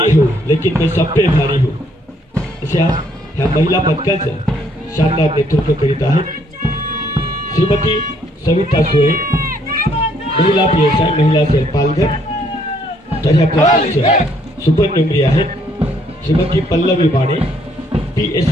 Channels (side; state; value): both; normal; correlation 0.67